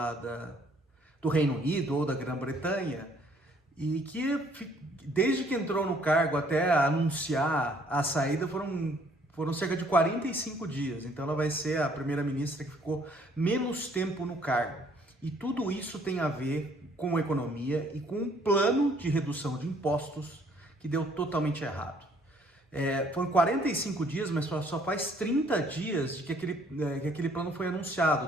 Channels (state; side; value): normal; both; correlation 0.62